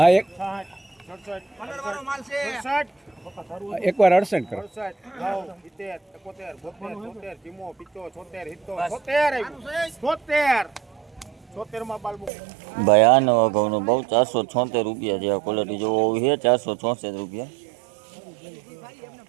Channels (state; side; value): drops out; left; at 12.3 s